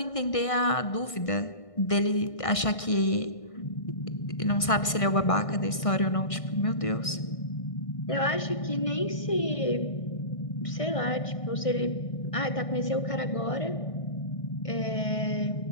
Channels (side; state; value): right; late; 1.6 ms